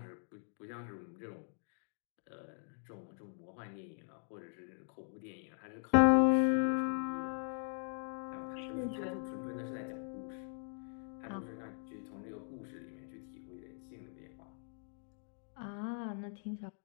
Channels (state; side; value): silent; right; 51 dB below the other